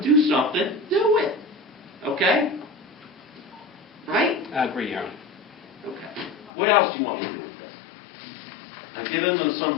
do something, do it. Okay? right? I agree, Your Honor. Okay. What else do you want me to do with this? I've given them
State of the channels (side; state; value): right; drops out; at 6.5 s